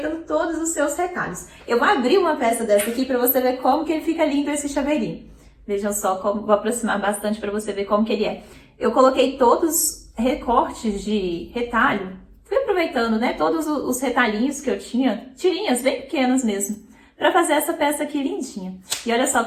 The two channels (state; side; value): identical; both; correlation 1.00